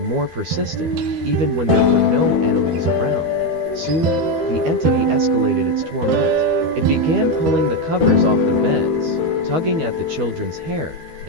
more persistent, even when there were no animals around. Soon, the entity escalated its torment. It began pulling the covers off the beds, tugging at the children's hair,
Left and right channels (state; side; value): late; left; 12 ms